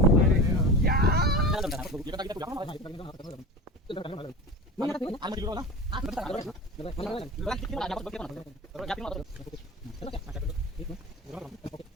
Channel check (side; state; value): both; normal; correlation 0.32